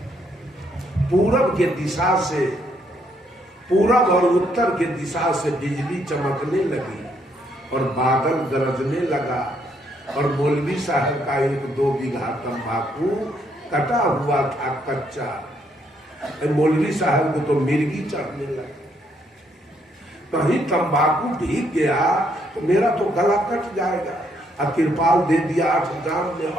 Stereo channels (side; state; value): both; normal; correlation 0.72